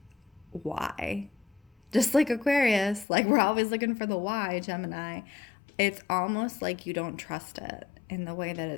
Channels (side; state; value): right; drops out; at 3.1 s